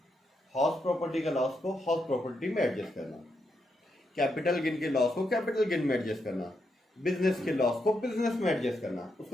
हाउस प्रॉपर्टी का लॉस को हाउस प्रॉपर्टी में एडजस्ट करना, कैपिटल गेन के लॉस को कैपिटल गेन में एडजस्ट करना, बिजनेस के लॉस को बिजनेस में एडजस्ट करना,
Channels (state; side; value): normal; both; correlation 0.82